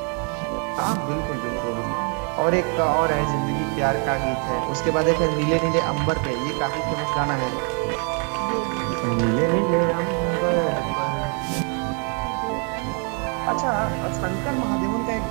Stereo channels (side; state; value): left; quieter; 38.3 dB